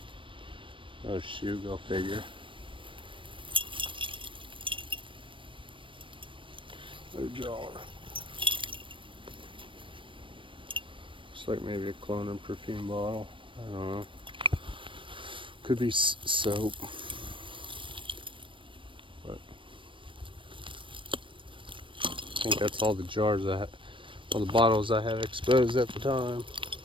Oh shoot, go figure. Another jar. Looks like maybe a clone and perfume bottle. I don't know. Could be soap. But I think that's all the jars I have, all the bottles I have exposed at the time.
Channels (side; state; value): left; late; 0.25 ms